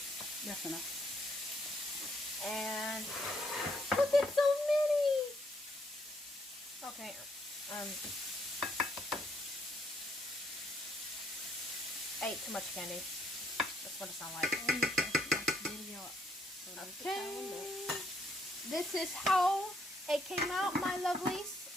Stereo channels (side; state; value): both; normal; correlation 0.72